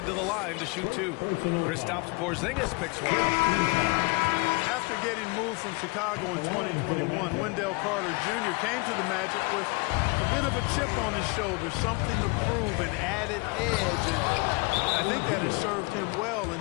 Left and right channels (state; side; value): quieter; right; 28.7 dB